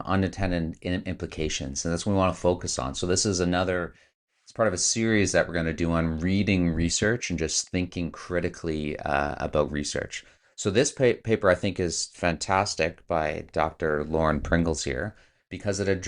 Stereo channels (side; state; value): both; identical; correlation 1.00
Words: unintended implications, and that's what we want to focus on. So, this is it's part of a series that we're going to do on reading research and just thinking critically about research. So this paper I think is fantastic by Dr. Lauren Pringles here because it